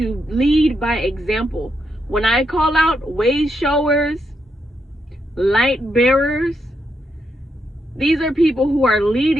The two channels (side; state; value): both; normal; correlation 0.81